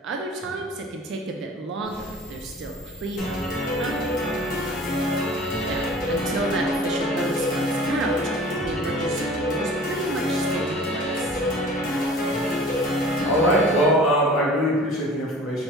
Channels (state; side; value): normal; both; correlation 0.44